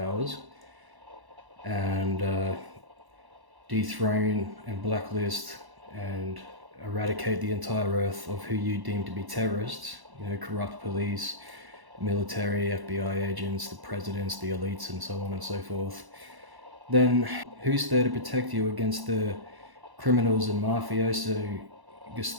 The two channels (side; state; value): left; late; 1.0 ms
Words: and dethrone and blacklist and eradicate the entire earth of who you deem to be terrorists, you know, corrupt police, military, FBI agents, the presidents, the elites, and so on and so forth. Then who's there to protect you against the criminals and mafioso